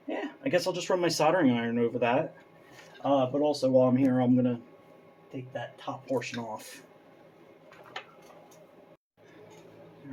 Yeah, I guess I'll just run my soldering iron over that. But also while I'm here, I'm going to take that top portion off.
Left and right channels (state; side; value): identical; both; correlation 1.00